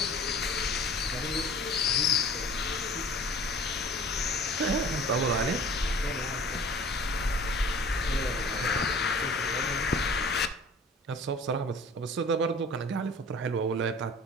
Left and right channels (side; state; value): both; normal; correlation 0.44